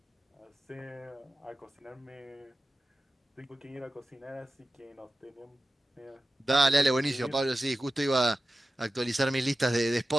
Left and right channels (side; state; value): both; normal; correlation 0.94